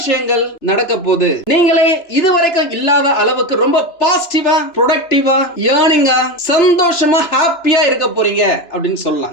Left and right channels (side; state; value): right; late; 3.0 ms